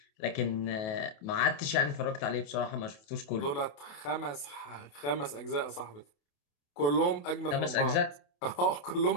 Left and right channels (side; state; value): right; late; 28 ms